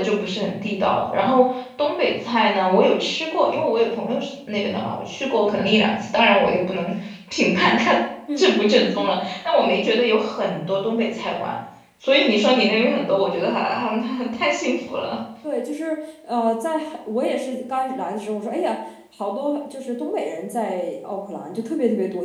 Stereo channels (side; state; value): both; identical; correlation 1.00